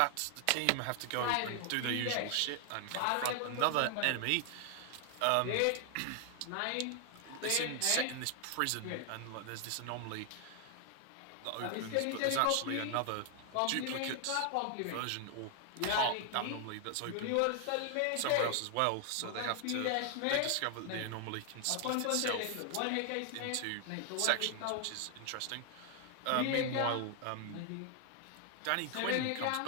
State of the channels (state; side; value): different; both; correlation 0.00